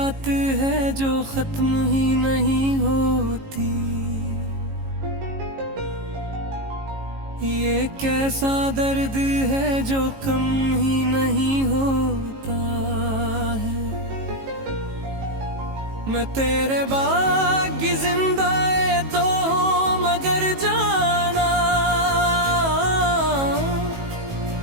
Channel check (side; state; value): left; late; 18 ms